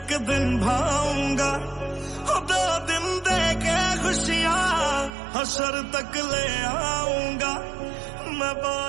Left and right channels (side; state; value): left; drops out; at 5.1 s